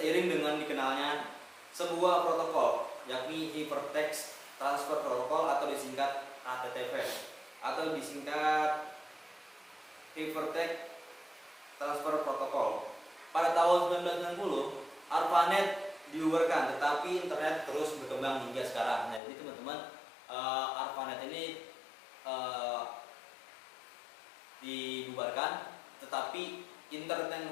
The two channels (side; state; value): right; drops out; at 19.2 s